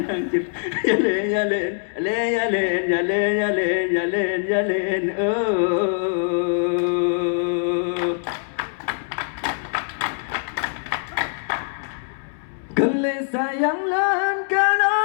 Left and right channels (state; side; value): silent; right; 64 dB below the other